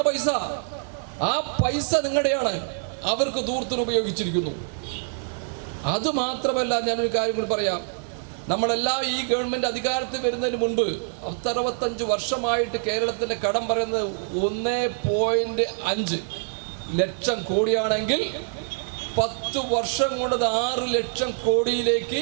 പൈസ. ആ പൈസ നിങ്ങളുടെയാണ്, അവർക്ക് ദൂർത്തിന് ഉപയോഗിച്ചിരിക്കുന്നു. അതുമാത്രമല്ല, ഞാനൊരു കാര്യം കൂടി പറയാം. നമ്മളെല്ലാം ഈ ഗവൺമെന്റ് അധികാരത്തിൽ വരുന്നതിന് മുൻപ് 65 വർഷമായിട്ട് കേരളത്തിന്റെ കടം പറയുന്നത് 1.5 ലക്ഷം കോടിയാണെങ്കിൽ 10 വർഷം കൊണ്ട് 6 ലക്ഷം കോടിയിലേക്ക്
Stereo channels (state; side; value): silent; left; digital silence